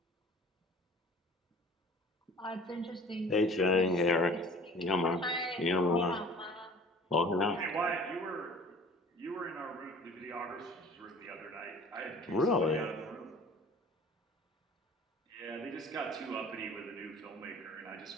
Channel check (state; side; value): normal; both; correlation 0.47